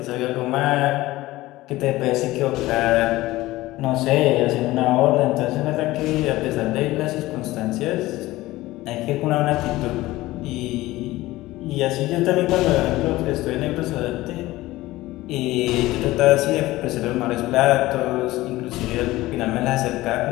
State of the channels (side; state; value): right; quieter; 17.9 dB